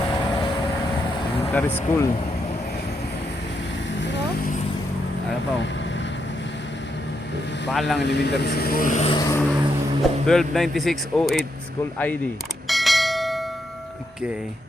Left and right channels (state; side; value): normal; both; correlation 0.81